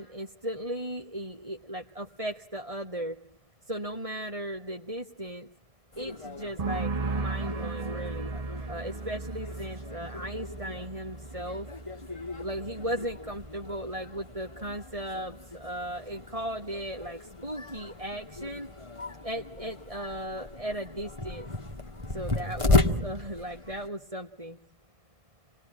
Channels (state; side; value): late; left; 1.5 ms